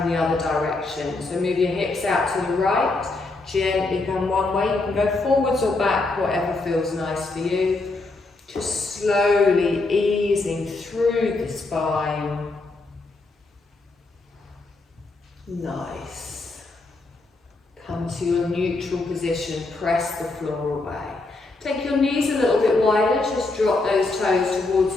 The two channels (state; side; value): quieter; right; 3.3 dB